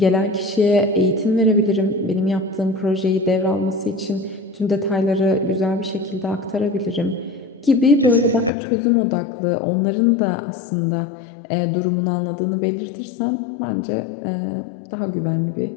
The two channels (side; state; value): right; drops out; at 8.5 s